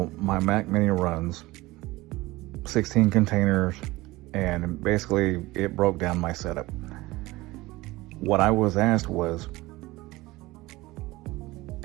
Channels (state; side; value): quieter; left; 19.8 dB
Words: my Mac Mini runs 16 containers, and basically it broke down my setup. What I was asked was,